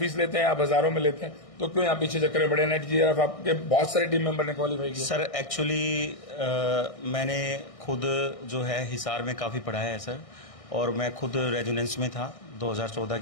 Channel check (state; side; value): late; right; 1.6 ms